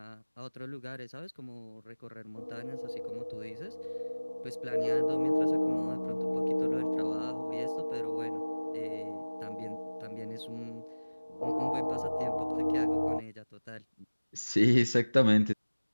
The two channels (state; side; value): inverted; both; correlation -1.00